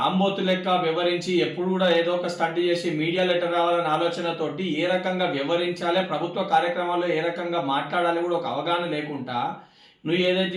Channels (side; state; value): both; identical; correlation 1.00